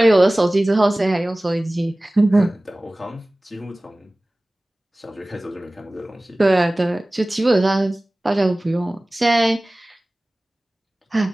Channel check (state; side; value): normal; both; correlation 0.98